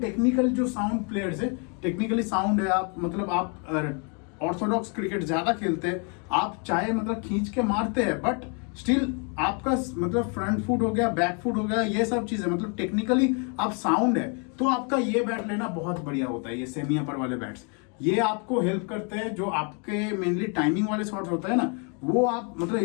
जो साउंड प्लेयर्स है, टेक्निकली साउंड है, आप मतलब आप ऑर्थोडॉक्स क्रिकेट ज्यादा खेलते हैं, आप चाहे मतलब खींच के मारते हैं, बट स्टिल आपका मतलब फ्रंट फुट हो गया, बैक फुट हो गया, ये सब चीजें मतलब टेक्निकली आप साउंड है, तो आपका ये बैट लेना बहुत बढ़िया होता है। ये सेमी अपर वाले बैट्स ये आपको हेल्प करते हैं। जो आपके मेनली टाइमिंग वाले शॉट्स होता है ना, वो आप मतलब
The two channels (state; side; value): quieter; right; 37.1 dB